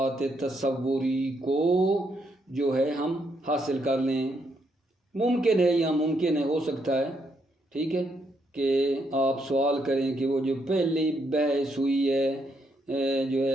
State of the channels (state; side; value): normal; both; correlation 0.76